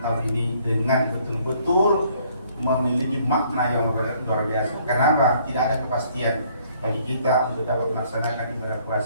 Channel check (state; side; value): inverted; both; correlation -0.63